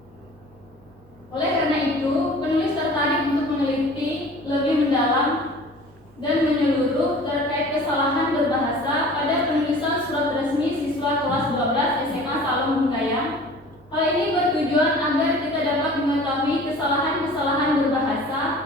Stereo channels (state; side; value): normal; both; correlation 0.44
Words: Oleh karena itu, penulis tertarik untuk meneliti lebih mendalam dan menyeluruh terkait kesalahan berbahasa pada penulisan surat resmi siswa kelas 12 SMA Salom Munggayam. Hal ini bertujuan agar kita dapat mengetahui kesalahan-kesalahan berbahasa,